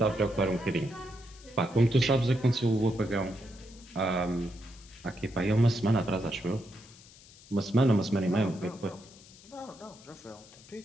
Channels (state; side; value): noise; left; hiss, 22 dB below the sound